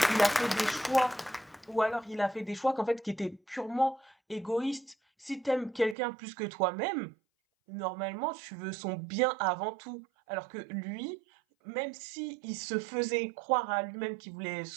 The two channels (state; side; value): drops out; left; at 6.0 s